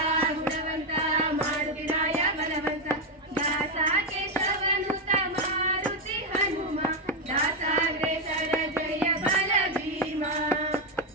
ಗುಣವಂತ ಮಾರುತಿ ರಾಯ ಬಲವಂತ ದಾಸ ಕೇಶವನುತ ಮಾರುತಿ ಹನುಮ ದಾಸಾಗ್ರೇಸರ ಜಯ ಬಲ ಭೀಮ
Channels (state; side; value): normal; both; correlation 0.06